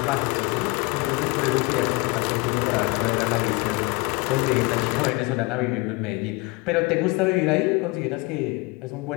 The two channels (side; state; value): right; quieter; 25.4 dB